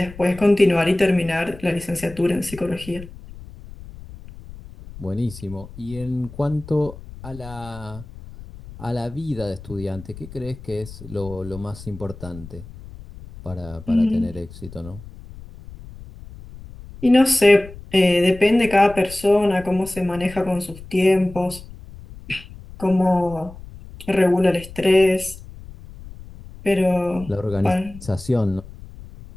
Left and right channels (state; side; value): noise; left; rumble, 16 dB below the sound